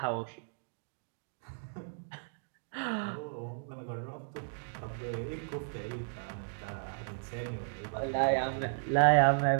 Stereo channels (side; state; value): left; silent; digital silence